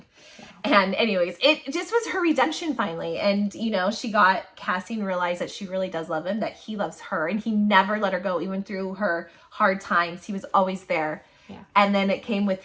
And anyways, it just was her redemption finally. And, you know, she got Cassian realized that she really does love him, that he loves her, and he never let her go, even through her hard times. He was always there. Yeah. And then it came with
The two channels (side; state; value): both; identical; correlation 1.00